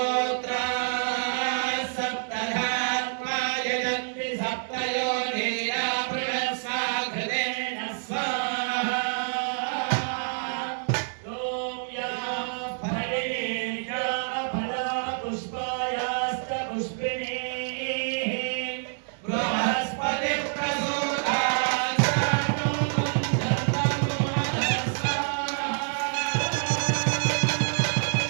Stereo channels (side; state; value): left; silent; digital silence